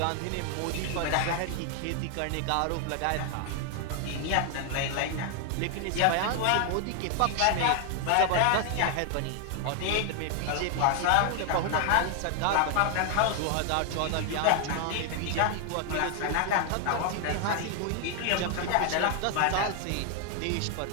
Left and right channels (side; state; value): both; different; correlation 0.00